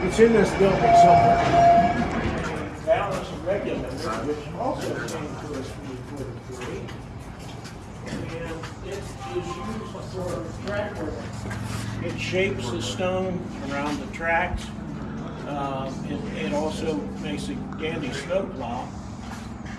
it's in this building somewhere. Balance and regulators, which also came to us from the 43. And it is used for track work. It shapes the stone around the tracks. It also makes a dandy snowplow.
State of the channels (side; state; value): both; identical; correlation 1.00